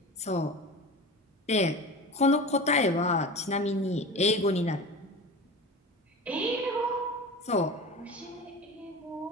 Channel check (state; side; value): normal; both; correlation 0.32